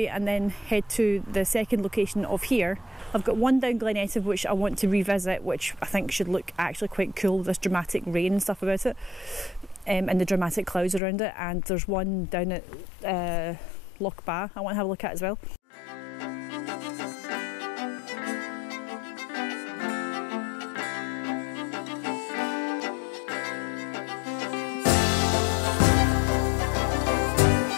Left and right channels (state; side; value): drops out; right; at 11.0 s